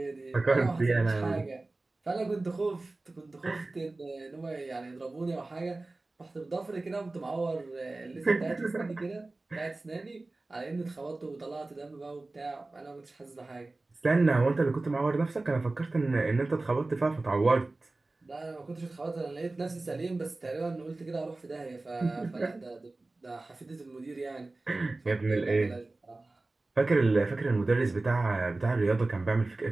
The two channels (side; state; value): left; quieter; 3.1 dB